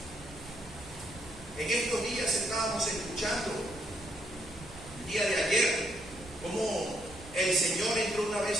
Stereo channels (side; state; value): right; noise; rumble, 18 dB below the sound